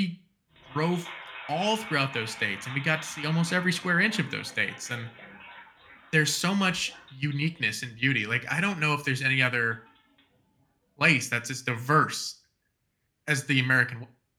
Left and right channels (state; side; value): identical; both; correlation 1.00